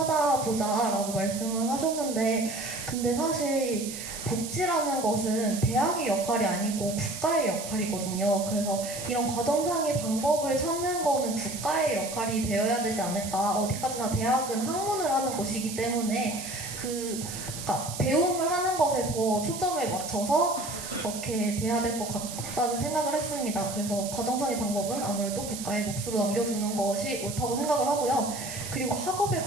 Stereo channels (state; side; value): noise; right; hiss, 9 dB below the sound